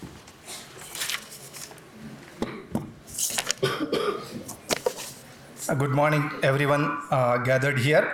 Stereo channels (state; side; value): identical; both; correlation 1.00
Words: Good morning, everyone gathered here.